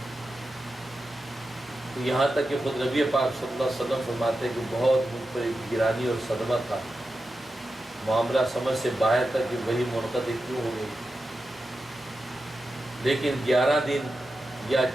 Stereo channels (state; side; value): normal; both; correlation 0.90